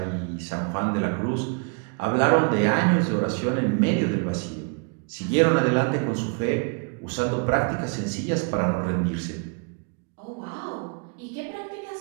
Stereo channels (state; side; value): quieter; left; 37.6 dB